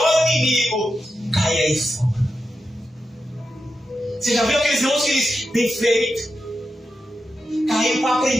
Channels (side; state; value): both; normal; correlation 0.89